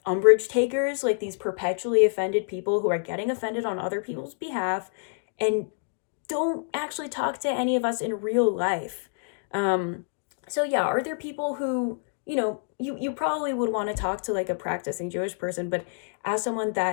umbrage takers, like these perpetually offended people who are getting offended on other people's behalf and don't actually talk to any of us in real life. So yeah, are there people who, you know, you probably would want to talk to, like, a practicing Jewish person, but as someone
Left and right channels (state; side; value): silent; right; digital silence